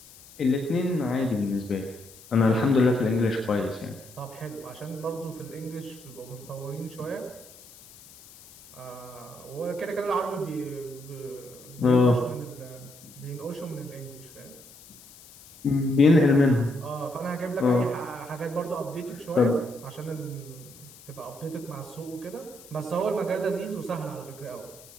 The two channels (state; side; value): noise; left; hiss, 21 dB below the sound